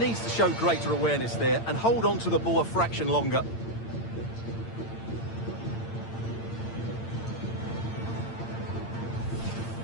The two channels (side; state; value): right; late; 8.8 ms